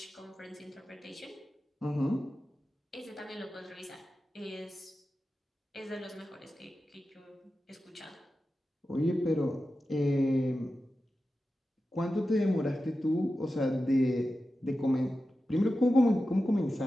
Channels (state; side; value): normal; both; correlation 0.92